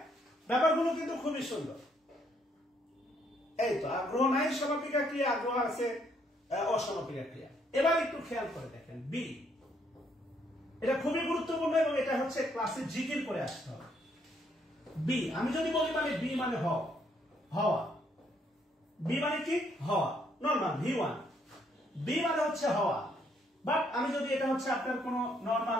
ব্যাপারগুলো কিন্তু খুবই সুন্দর। এই তো আগ্রহ নাই সমাপিকা ক্রিয়া, আগ্রহ আছে অসমাপিকা ক্রিয়া। এবার একটু খেয়াল করে দেখেন বি, এটা খুবই গুরুত্বপূর্ণ এবং এটা হচ্ছে ক্লাসে জিকির করে আসতে হবে। বি আমি যদি বলি, মানে বি মানে হওয়া। বি মানে কি? হওয়া। নরমাল V1, বি মানে হচ্ছে হওয়া। বাট আমি যদি এটা হচ্ছে আপনার কোন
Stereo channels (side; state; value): both; normal; correlation 0.70